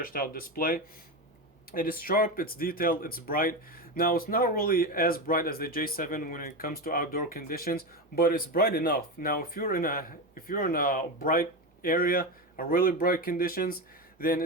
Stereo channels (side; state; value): both; normal; correlation 0.17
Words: out display. It is sharp, it's detailed, it's bright. Now, it's not really as bright as the J7 when it comes to outdoor conditions, but it's bright enough. Now, if you're in a bright area, a really bright conditions, then